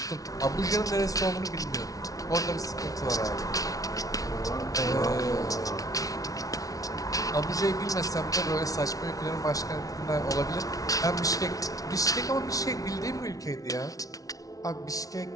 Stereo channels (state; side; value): late; right; 0.18 ms